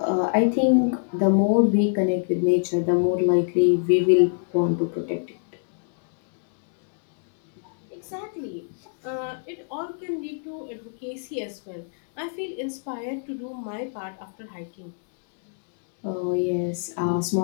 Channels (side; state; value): right; silent; digital silence